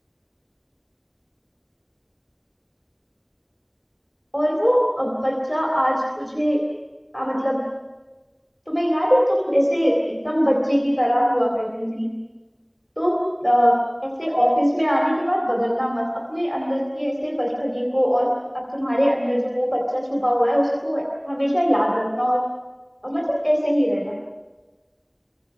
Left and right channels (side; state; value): both; identical; correlation 1.00